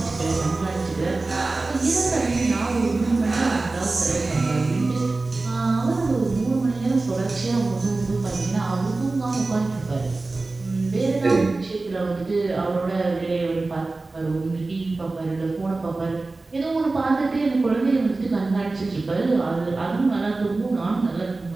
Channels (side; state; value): left; quieter; 3.4 dB